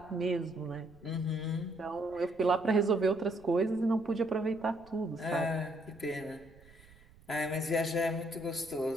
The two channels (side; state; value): right; noise; rumble, 25 dB below the sound